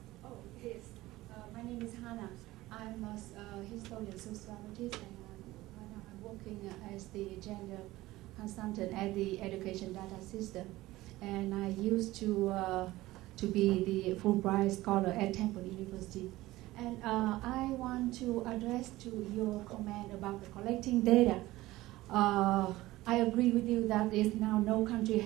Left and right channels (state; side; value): quieter; left; 17.7 dB